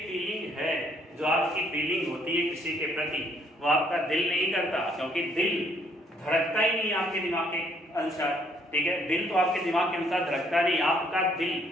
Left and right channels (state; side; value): normal; both; correlation 0.67